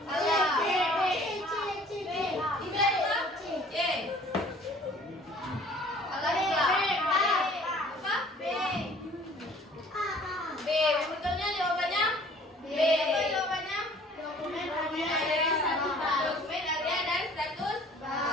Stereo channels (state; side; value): normal; both; correlation 0.53